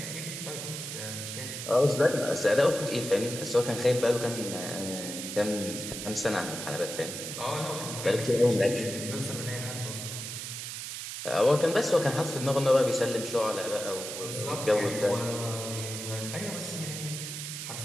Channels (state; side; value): noise; right; hiss, 7 dB below the sound